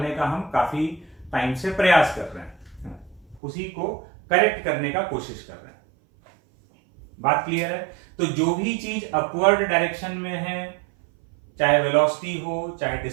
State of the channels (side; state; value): left; drops out; at 3.4 s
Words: का हम काफी टाइम से प्रयास कर रहे हैं, उसी को करेक्ट करने का कोशिश कर रहे हैं। बात क्लियर है। तो जो भी चीज अपवर्ड डायरेक्शन में है, चाहे वेलोसिटी हो चाहे